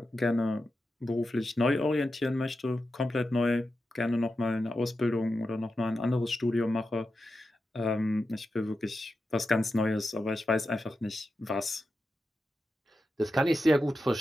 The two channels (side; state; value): both; normal; correlation 0.90